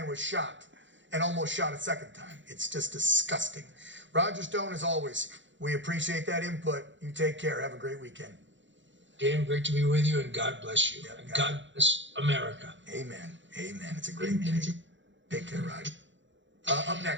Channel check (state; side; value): late; left; 0.54 ms